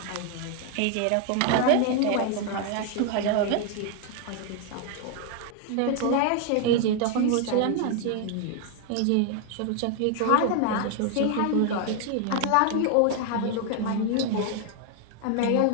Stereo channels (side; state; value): both; different; correlation 0.00